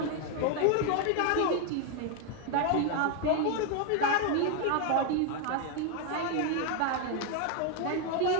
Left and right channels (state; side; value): different; both; correlation 0.01